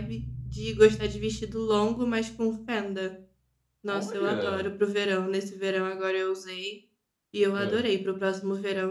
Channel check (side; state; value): both; identical; correlation 1.00